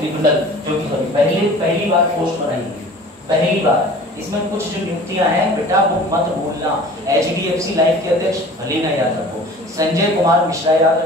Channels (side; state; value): both; normal; correlation 0.44